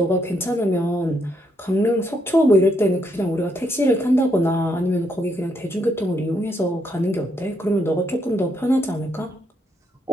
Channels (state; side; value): normal; both; correlation 0.76